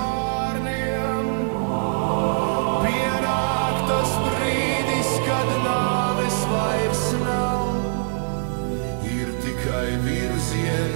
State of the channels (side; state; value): left; silent; digital silence